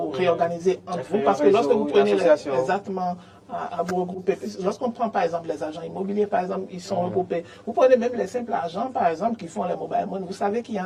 réorganiser entre vous? Parce que réseau, lorsque vous une prenez association. exactement à vous regrouper, lorsqu'on prend par exemple les agents immobiliers, par exemple, ils sont regroupés. Vous prenez même les simples agents, par exemple, qui font les mobile money. Vous savez qu'il y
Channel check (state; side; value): identical; both; correlation 1.00